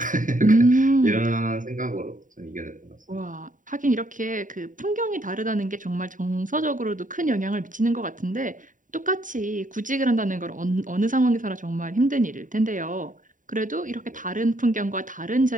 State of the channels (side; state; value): left; late; 0.38 ms